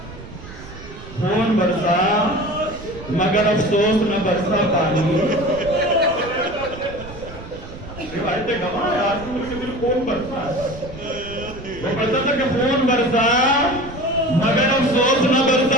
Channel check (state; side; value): noise; right; rumble, 15 dB below the sound